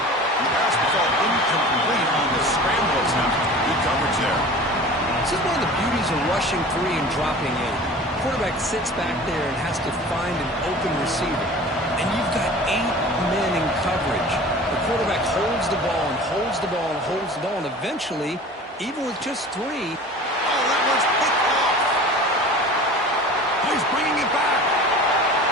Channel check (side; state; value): both; normal; correlation 0.40